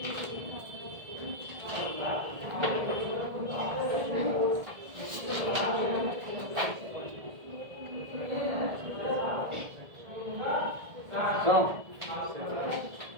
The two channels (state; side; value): late; left; 1.7 ms